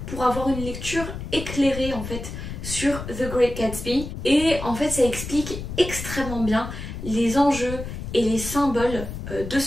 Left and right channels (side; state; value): left; noise; rumble, 8 dB below the sound